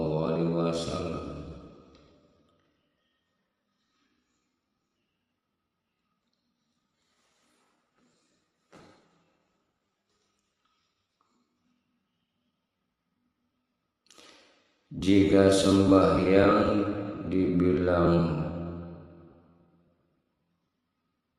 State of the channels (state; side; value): identical; both; correlation 1.00